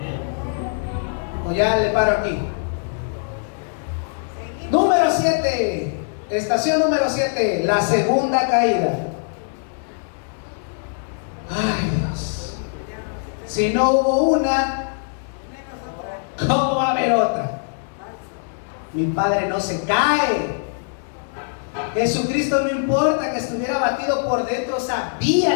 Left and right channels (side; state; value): right; silent; digital silence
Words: O ya le paro aquí. Número 7. Estación número 7. La segunda caída. Ay, Dios. Si no hubo una, ¿cómo va a haber otra? Mi Padre no se cae. Jesucristo, no importa que estuviera abatido por dentro,